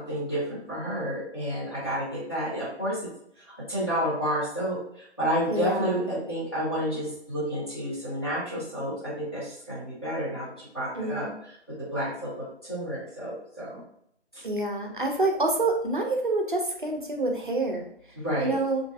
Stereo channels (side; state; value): both; normal; correlation 0.18